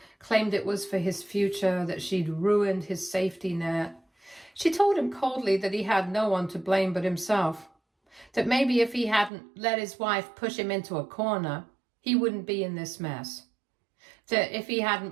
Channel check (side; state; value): left; drops out; at 9.3 s